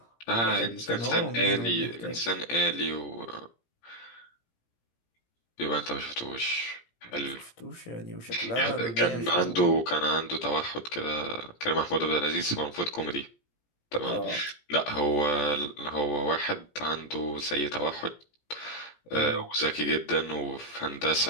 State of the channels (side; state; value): right; late; 17 ms